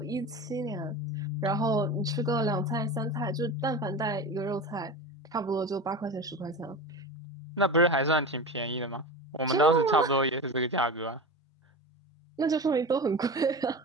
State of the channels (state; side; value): normal; both; correlation 0.28